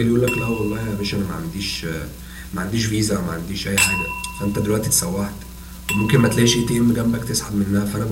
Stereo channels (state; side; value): identical; both; correlation 1.00